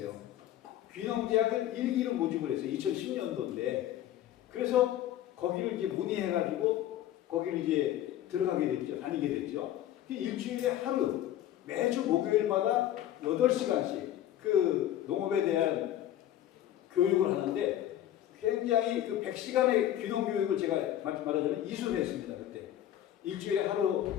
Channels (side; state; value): right; quieter; 12.2 dB